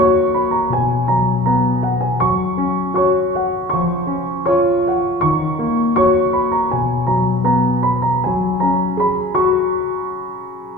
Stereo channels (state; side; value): normal; both; correlation 0.45